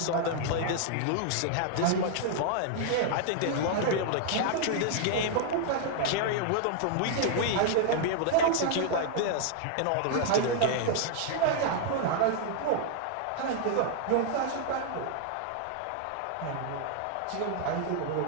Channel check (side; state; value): both; different; correlation -0.01